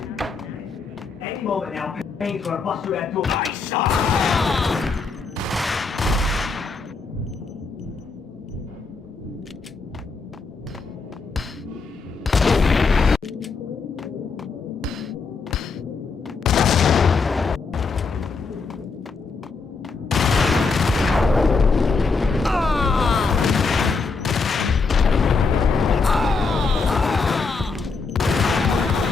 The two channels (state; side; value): quieter; right; 4.5 dB